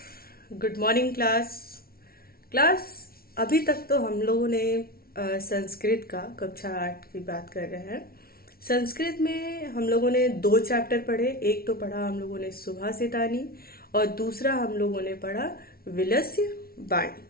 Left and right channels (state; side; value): late; right; 0.44 ms